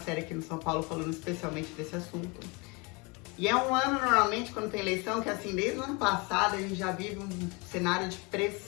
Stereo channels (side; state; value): right; quieter; 28.6 dB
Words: aqui no São Paulo falando especialmente desse assunto. E é um ano, normalmente, quando tem eleição, que assim, desde o ano passado a gente já vive um cenário de